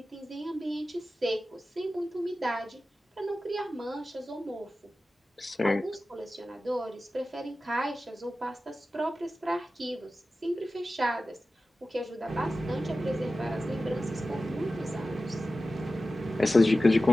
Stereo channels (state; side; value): normal; both; correlation 0.95